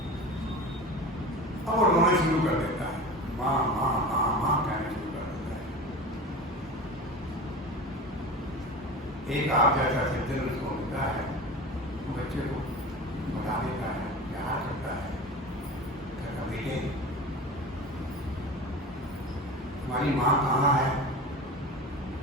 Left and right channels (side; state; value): both; normal; correlation 0.32